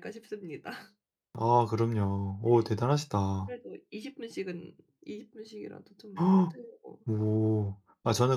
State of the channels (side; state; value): both; identical; correlation 1.00